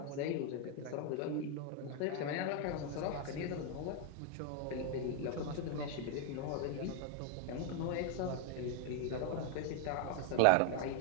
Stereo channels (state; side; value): different; both; correlation 0.00